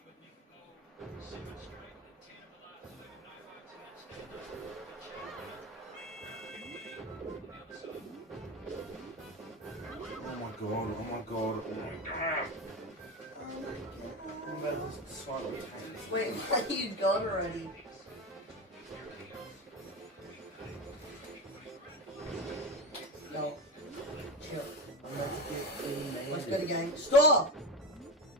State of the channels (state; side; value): normal; both; correlation 0.23